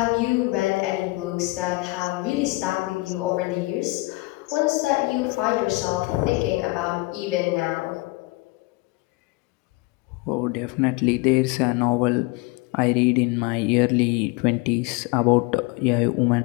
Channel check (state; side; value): quieter; right; 23.3 dB